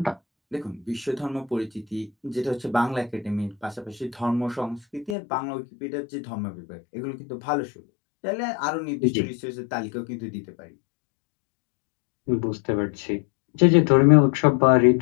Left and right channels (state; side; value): drops out; right; at 5.2 s